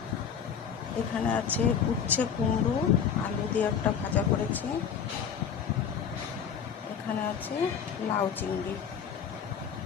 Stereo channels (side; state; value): right; quieter; 7.5 dB